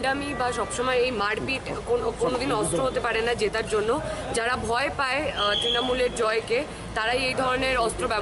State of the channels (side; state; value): both; identical; correlation 1.00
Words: বা সবসময় এই মারপিট কোনোদিন অস্ত্র হতে পারে না জেতার জন্য। যারা ভয় পায় তৃণমূলের জয়কে তারাই এই ধরনের অস্ত্র